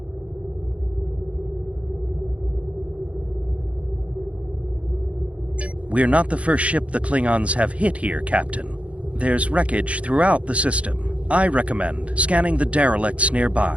We're not the first ship the Klingons have hit here, Captain. There's wreckage throughout the system. I recommend scanning the derelicts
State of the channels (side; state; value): left; late; 0.063 ms